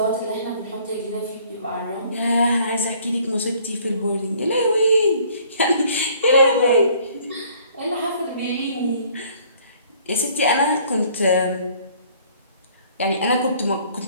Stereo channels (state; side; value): inverted; both; correlation -0.58